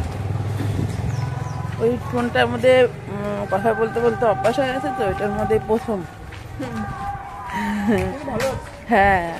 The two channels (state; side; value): identical; both; correlation 1.00